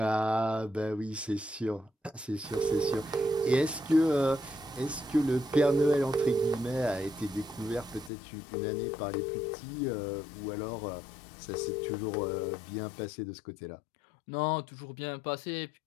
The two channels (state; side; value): drops out; right; at 8.1 s